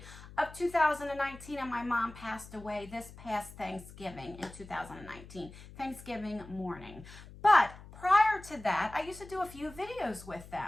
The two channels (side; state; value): left; noise; hum, 17 dB below the sound